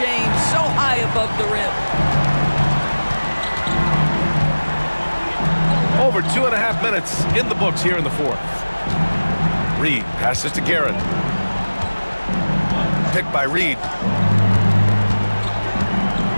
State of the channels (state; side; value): inverted; both; correlation -1.00